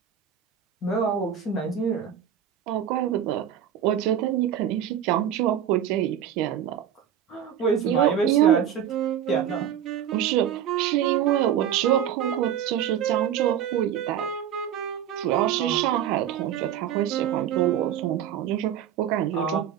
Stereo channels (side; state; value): left; quieter; 9.6 dB